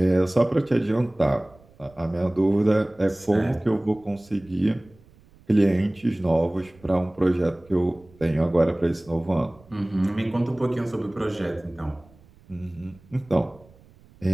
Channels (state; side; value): noise; right; rumble, 27 dB below the sound